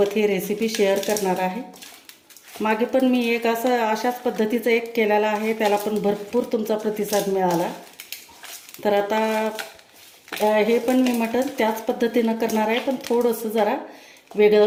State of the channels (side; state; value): both; identical; correlation 1.00